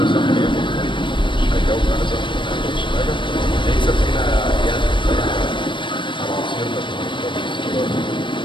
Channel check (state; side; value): late; right; 0.24 ms